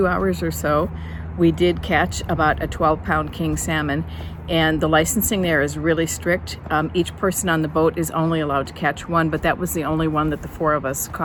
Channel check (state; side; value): identical; both; correlation 1.00